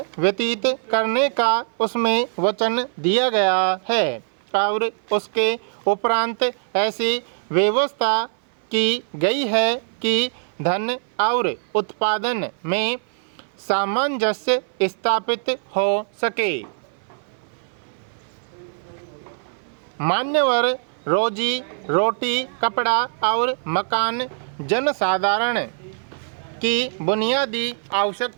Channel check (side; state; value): left; silent; 57 dB below the other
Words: व्यतीत करने का उसमें वचन दिया गया है और उसके उपरांत ऐसी व्यवस्था की गई है कि धन और उत्पादन में सामंजस्य स्थापित हो सके। मान्यवर, रोजी रोटी, कपड़ा और मकान जनसाधारण की बुनियादी